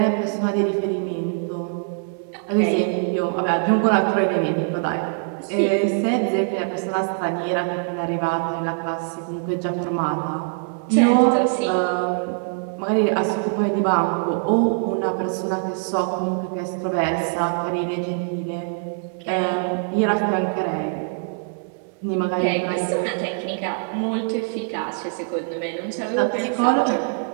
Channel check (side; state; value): left; silent; 63 dB below the other